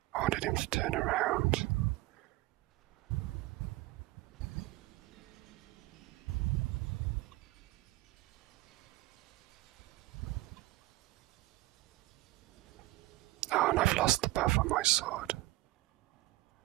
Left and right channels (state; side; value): quieter; left; 19.0 dB